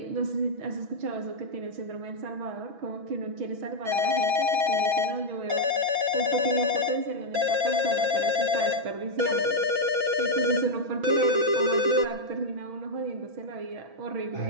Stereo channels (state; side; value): late; left; 6.1 ms